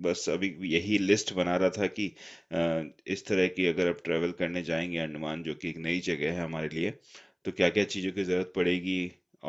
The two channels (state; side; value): identical; both; correlation 1.00